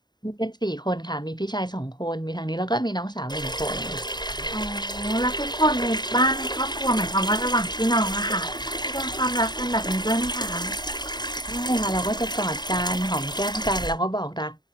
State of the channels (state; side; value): late; right; 0.21 ms